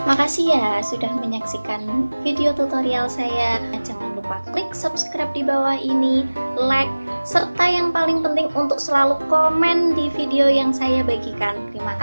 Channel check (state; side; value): inverted; both; correlation -1.00